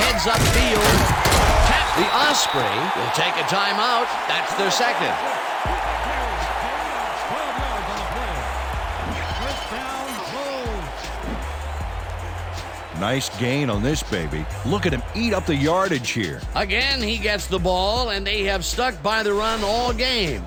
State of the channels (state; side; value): identical; both; correlation 1.00